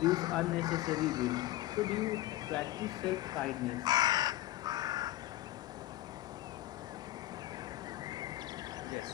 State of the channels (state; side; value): quieter; right; 15.8 dB